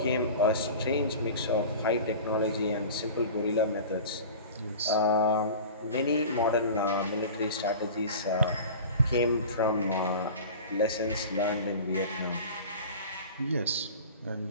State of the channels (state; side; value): inverted; both; correlation -0.37